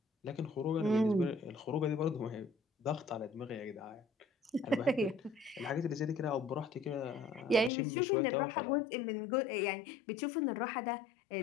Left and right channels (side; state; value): right; drops out; at 7.7 s